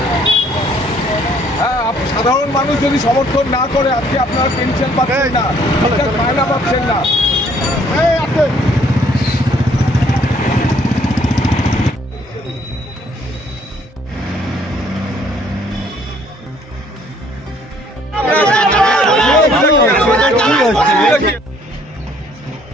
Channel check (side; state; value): both; normal; correlation 0.62